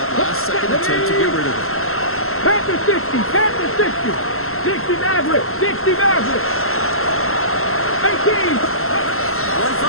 last second attempt to get rid of it. Panther 60, Panther 60! 60 Mavericks, 60 Mavericks! 18! One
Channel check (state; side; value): late; right; 0.62 ms